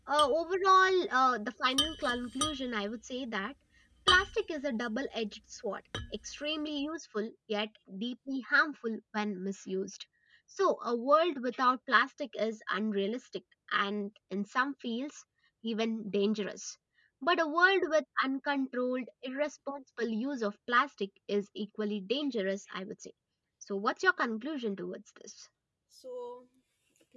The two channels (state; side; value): identical; both; correlation 1.00